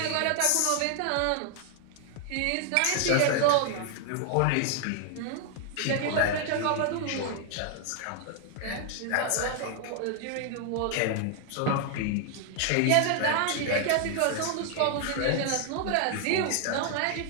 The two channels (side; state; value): both; different; correlation 0.00